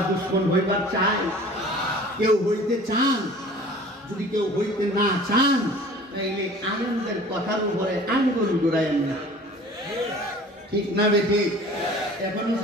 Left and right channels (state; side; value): normal; both; correlation 0.46